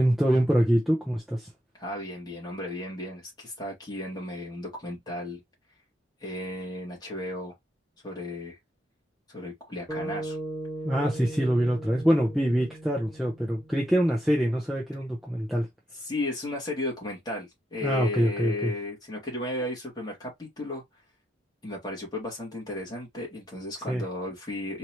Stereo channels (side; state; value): both; normal; correlation 0.81